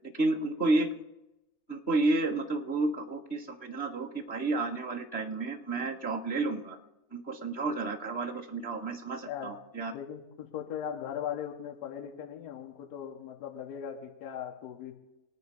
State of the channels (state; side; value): late; right; 3.0 ms